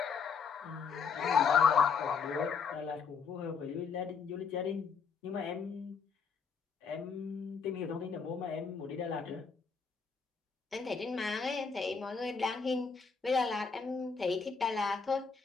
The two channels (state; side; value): quieter; right; 5.6 dB